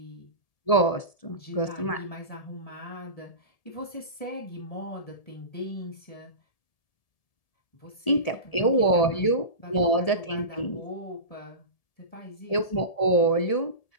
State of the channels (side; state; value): right; late; 1.7 ms